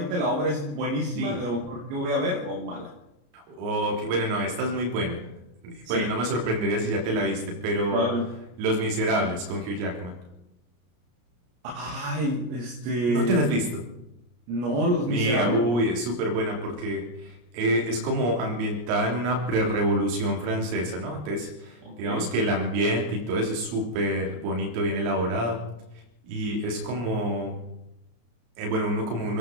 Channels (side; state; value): left; late; 34 ms